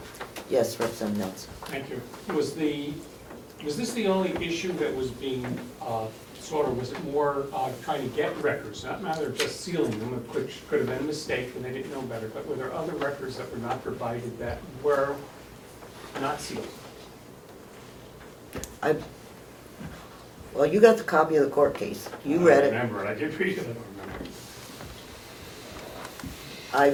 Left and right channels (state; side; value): identical; both; correlation 1.00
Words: Yes, Representative Nelson. Thank you. Was this the only issue that was being was it more trying to get records, not a matter of just sealing them, which could have been a mistake and they didn't know better, but were there other records that were not provided that were not sealed? Well, you got the copy of the court case. You read it. I remember it. I did read it. I